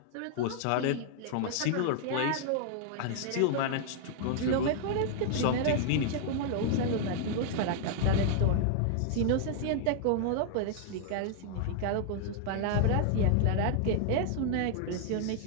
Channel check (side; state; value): both; different; correlation -0.01